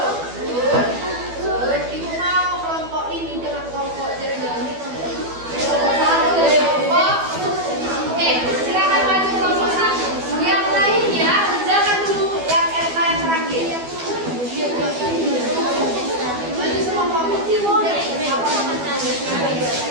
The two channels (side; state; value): left; late; 12 ms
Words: Ibu mau kelompok ini dengan kelompok jernih. Oke, silakan maju kelompok 1. Yang lainnya kerjakan dulu yang RK yang terakhir. Maju semua kelompok.